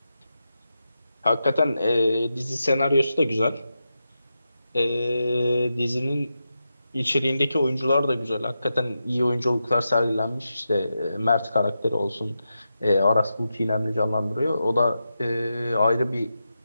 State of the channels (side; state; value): both; inverted; correlation -0.89